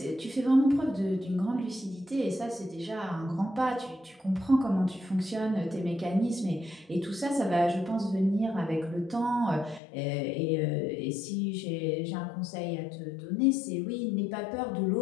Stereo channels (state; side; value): drops out; right; at 9.8 s